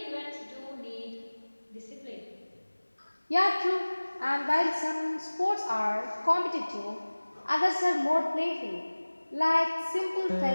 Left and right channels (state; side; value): inverted; both; correlation -1.00